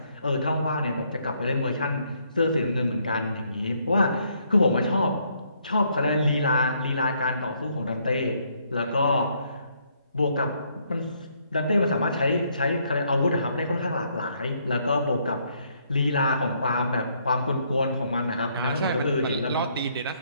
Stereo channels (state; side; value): inverted; both; correlation -0.71